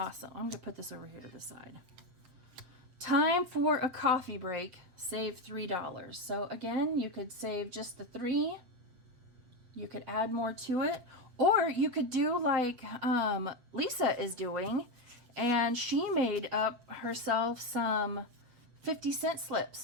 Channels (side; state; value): left; late; 7.5 ms